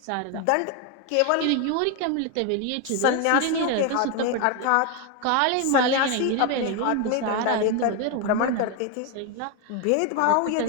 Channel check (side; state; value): both; different; correlation 0.01